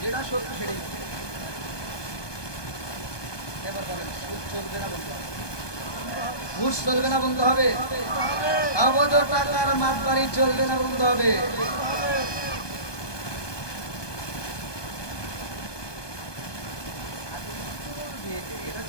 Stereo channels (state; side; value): late; right; 1.2 ms